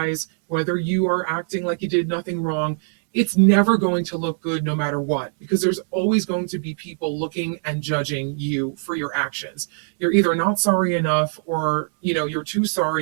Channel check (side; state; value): left; silent; digital silence